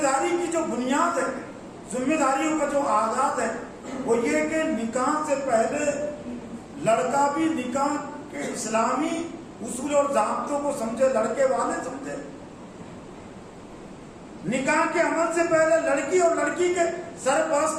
داری کی جو بنیاد ہے، ذمہ داریوں کا جو آغاز ہے، وہ یہ کہ نکاح سے پہلے لڑکا بھی نکاح کے اسلامی اصول اور ضابطوں کو سمجھے، لڑکے والے سمجھے۔ نکاح کے عمل سے پہلے لڑکی اور لڑکی کے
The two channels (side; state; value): both; identical; correlation 1.00